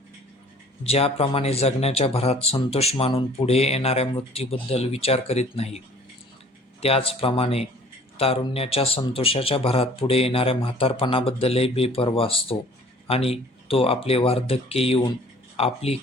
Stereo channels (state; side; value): normal; both; correlation 0.52